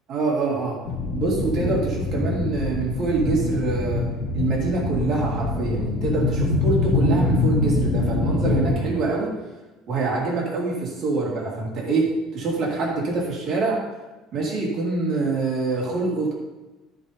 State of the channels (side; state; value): both; normal; correlation 0.42